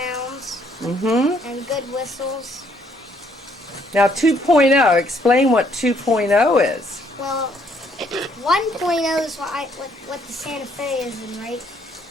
and good whistles. Now 2.0, explain what 2.0 is. Well, 1.0 is what the Santa Fe is in, right?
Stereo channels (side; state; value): both; normal; correlation 0.67